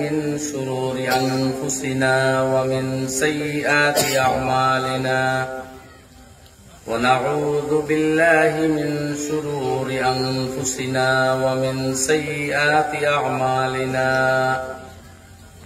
من شرور أنفسنا ومن سيئات أعمالنا ونعوذ بالله من شرور أنفسنا ومن سيئات أعمالنا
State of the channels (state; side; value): identical; both; correlation 1.00